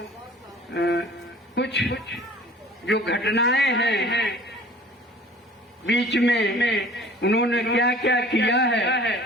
कुछ जो घटनाएं हैं बीच में उन्होंने क्या क्या किया है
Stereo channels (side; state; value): both; normal; correlation 0.48